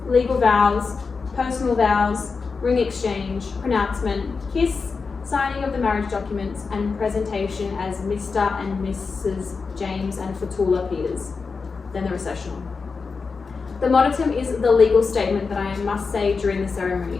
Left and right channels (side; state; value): right; quieter; 4.8 dB